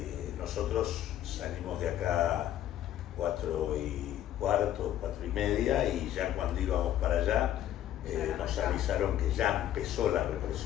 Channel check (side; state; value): right; quieter; 12.0 dB